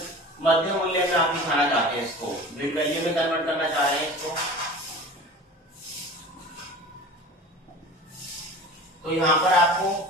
मध्य मूल्य में आप दिखाना चाहते हैं इसको, मिड वैल्यू में कन्वर्ट करना चाह रहे हैं इसको, तो यहां पर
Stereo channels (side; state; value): both; normal; correlation 0.38